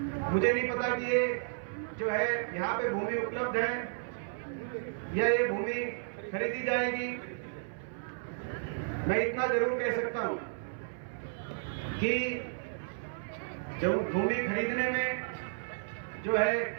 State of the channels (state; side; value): silent; left; 56 dB below the other